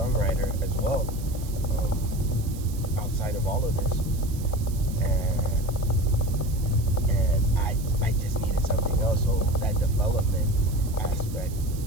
as well, outside of all of this. And I just needed something else. So that development aspect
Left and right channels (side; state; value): right; noise; hiss, 17 dB below the sound